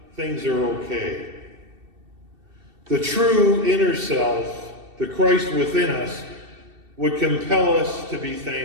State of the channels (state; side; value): late; left; 2.7 ms